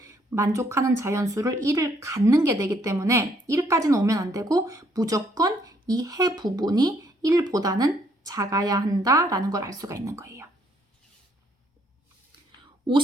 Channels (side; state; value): both; normal; correlation 0.68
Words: 만족하는 자연수를 1을 갖는 게 되기 때문에 1까지는 오면 안 되고 무조건 이 해 부분이 1보다는 작아야 한다라는 걸 알 수가 있는 거예요.